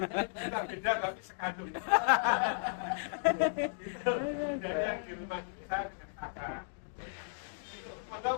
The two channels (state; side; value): silent; right; digital silence